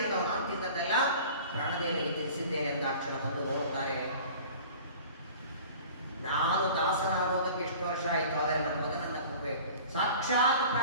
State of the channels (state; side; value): inverted; both; correlation -0.43